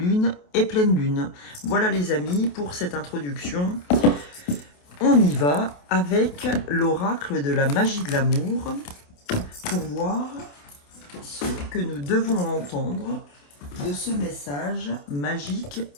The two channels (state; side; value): late; right; 28 ms